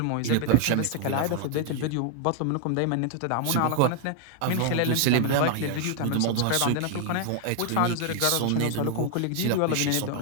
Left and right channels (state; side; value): different; both; correlation 0.00